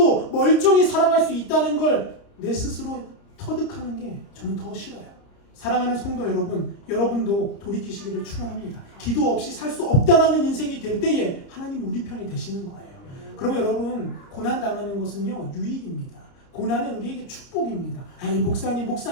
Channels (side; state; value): right; late; 30 ms